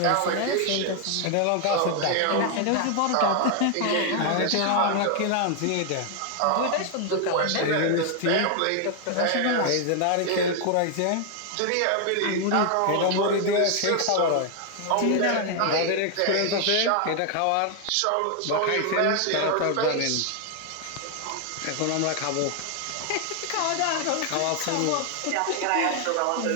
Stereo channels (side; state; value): both; different; correlation 0.00